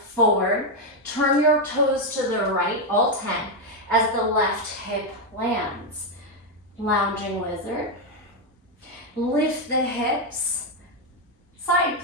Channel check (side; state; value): both; normal; correlation 0.03